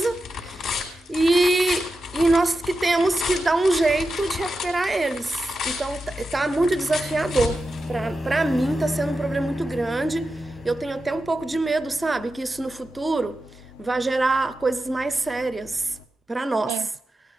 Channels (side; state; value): both; normal; correlation 0.91